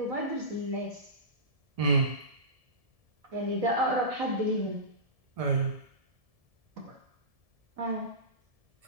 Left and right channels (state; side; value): late; left; 1.7 ms